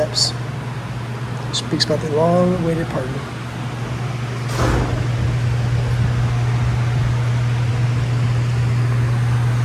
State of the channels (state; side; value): identical; both; correlation 1.00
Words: Speaks about the long-awaited pardon.